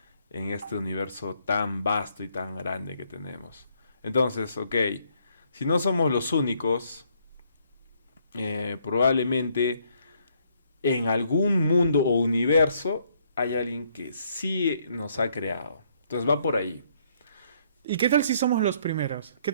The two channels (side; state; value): both; inverted; correlation -0.69